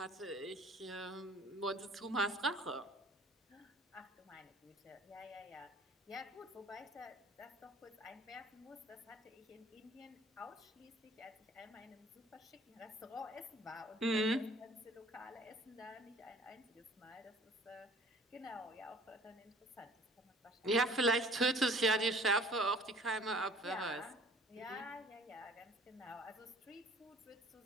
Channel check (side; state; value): both; normal; correlation 0.51